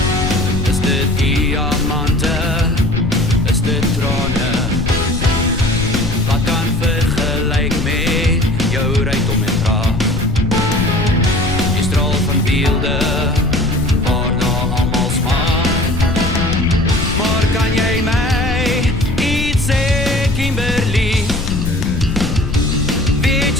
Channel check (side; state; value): left; noise; rumble, 4 dB below the sound